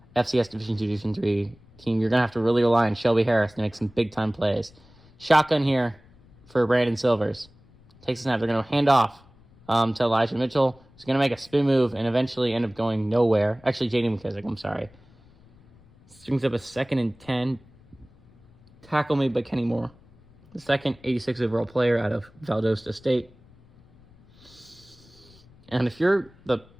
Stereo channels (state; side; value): noise; left; rumble, 27 dB below the sound